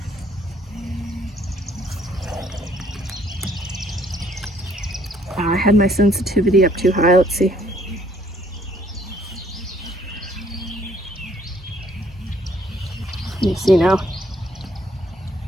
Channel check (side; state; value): both; normal; correlation 0.64